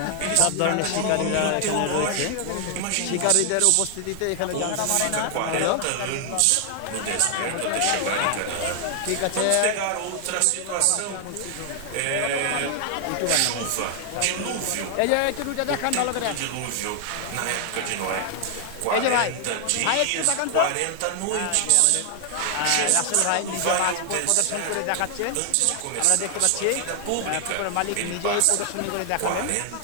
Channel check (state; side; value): different; both; correlation 0.00